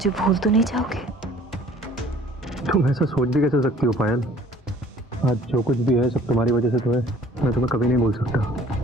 भूल तो नहीं जाओगे? तुम ऐसा सोच भी कैसे सकती हो पायल? आज जो कुछ भी है सब तुम्हारी वजह से तो है। मैं तुम्हें कभी नहीं भूल सकता।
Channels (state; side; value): normal; both; correlation 0.54